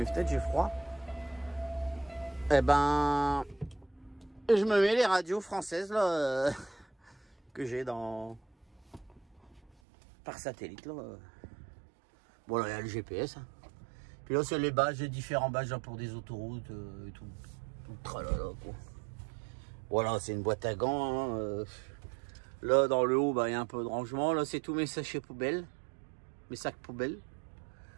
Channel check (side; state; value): left; drops out; at 9.7 s